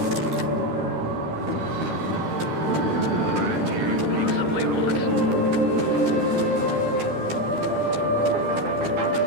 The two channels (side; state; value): left; late; 12 ms